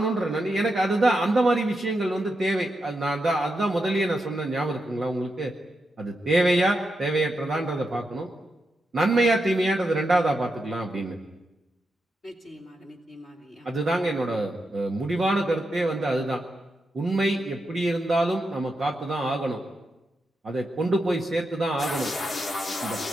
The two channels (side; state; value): both; normal; correlation 0.86